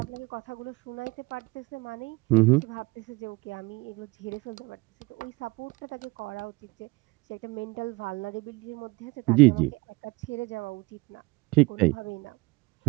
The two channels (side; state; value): left; quieter; 24.5 dB